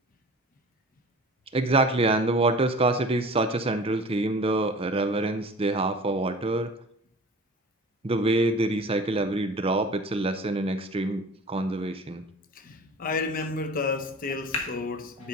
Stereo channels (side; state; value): both; normal; correlation 0.41